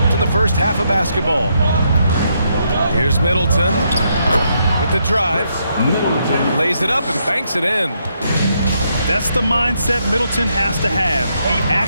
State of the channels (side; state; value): both; inverted; correlation -0.77